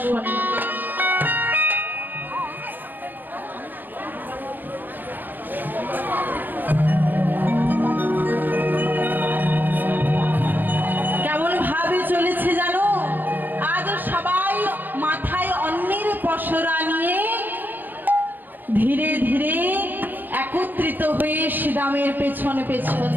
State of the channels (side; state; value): left; late; 0.088 ms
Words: কেমন ভাবে চলেছে জানো? আজ সবাই মাথায় অন্নের পসরা নিয়ে ধীরে ধীরে একত্রিত হয়ে শ্রীরামের পেছন পেছন